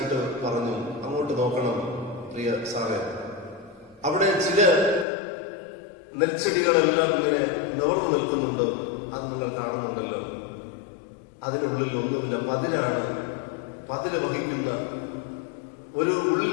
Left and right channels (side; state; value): right; drops out; at 5.1 s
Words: പറഞ്ഞു, അങ്ങോട്ട് നോക്കണം പ്രിയ സാറേ, അവിടെ ചില നെൽച്ചെടികളെല്ലാം ഇങ്ങനെ നിവർന്നു നിൽക്കുന്നുണ്ട്, അത് നിങ്ങൾ കാണുന്നുണ്ടല്ലോ. അതിനുള്ളിൽ ഒന്നുമില്ല, പതില് വഹിക്കുന്ന ഒരു ഉള്ളിൽ